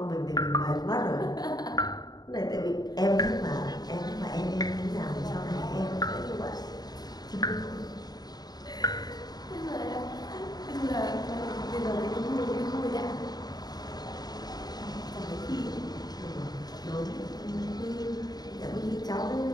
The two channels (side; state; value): right; late; 0.19 ms